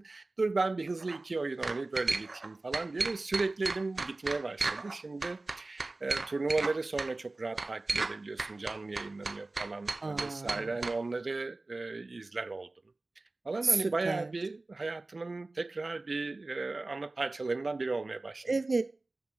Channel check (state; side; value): quieter; left; 3.1 dB